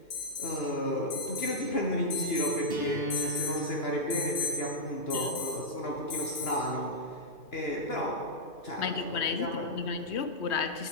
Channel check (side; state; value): right; late; 2.5 ms